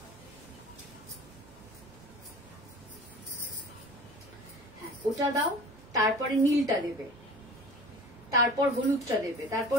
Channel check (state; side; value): normal; both; correlation 0.41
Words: হ্যাঁ ওটা দাও, তারপরে নীলটা দেবে, তারপর হলুদটা দেবে,